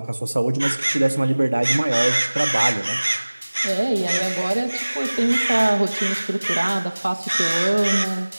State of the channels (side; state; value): both; inverted; correlation -1.00